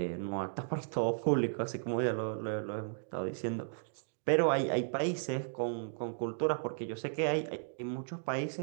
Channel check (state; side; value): silent; left; digital silence